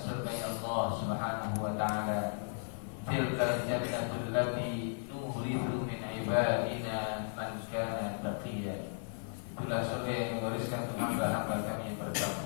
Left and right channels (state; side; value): silent; right; digital silence